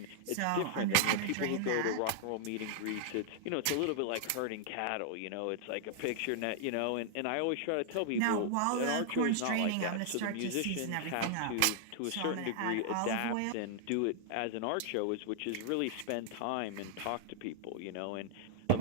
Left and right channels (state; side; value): different; both; correlation 0.00